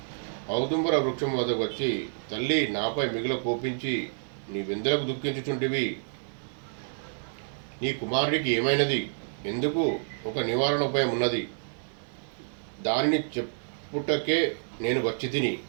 ఔదుంబర వృక్షం వద్దకు వచ్చి, తల్లి, నాపై మిగుల కోపించి నీవెందులకు దుఃఖించుచుంటివి? నీ కుమారుడికి ఏమైనది? ఎందుకు? ఒక నివారణ ఉపాయం ఉన్నది, దానిని చెప్పుటకే నేను వచ్చి తిని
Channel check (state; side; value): silent; left; digital silence